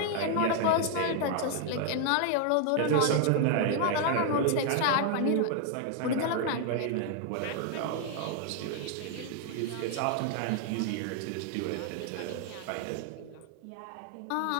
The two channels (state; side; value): different; both; correlation 0.00